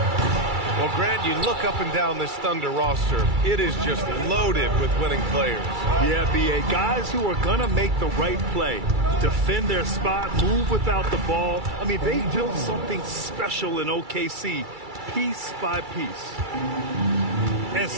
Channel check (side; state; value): left; late; 2.3 ms